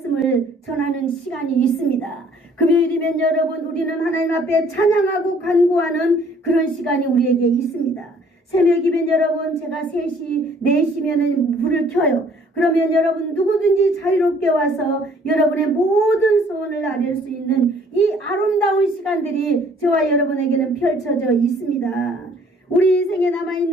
전하는 시간이 있습니다. 금요일이면 여러분 우리는 하나님 앞에 찬양하고 간구하는 그런 시간이 우리에게 있습니다. 새벽이면 여러분 제가 3시, 4시면은 불을 켜요. 그러면 여러분 누구든지 자유롭게 와서 여러분의 모든 소원을 아뢰 수 있는 이 아름다운 시간들이 저와 여러분에게는 펼쳐져 있습니다. 우리 인생에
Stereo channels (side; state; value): both; normal; correlation 0.59